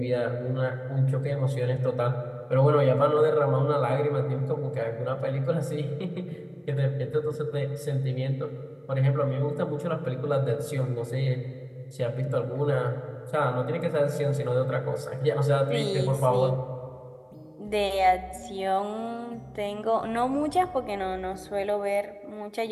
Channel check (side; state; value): both; identical; correlation 1.00